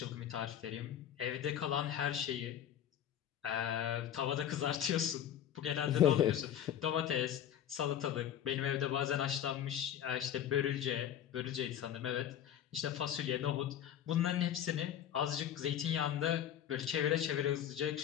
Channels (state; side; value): quieter; right; 10.2 dB